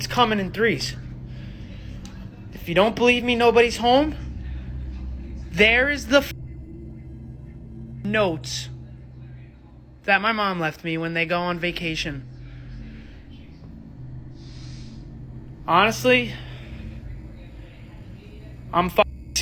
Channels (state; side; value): identical; both; correlation 1.00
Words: coming in threes. If you don't believe me, nobody's home. There is the notes that my mom left me when they go on vacation. Honestly, I'm